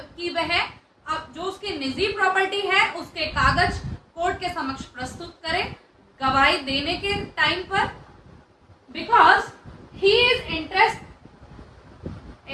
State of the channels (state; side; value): identical; both; correlation 1.00